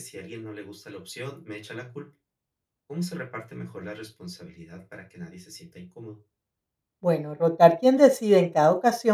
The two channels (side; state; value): both; identical; correlation 1.00